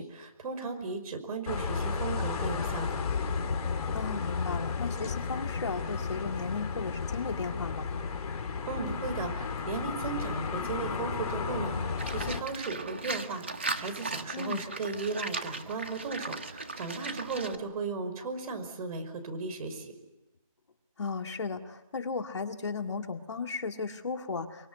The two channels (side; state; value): both; inverted; correlation -0.45